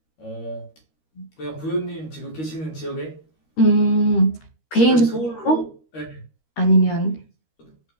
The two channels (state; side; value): late; right; 13 ms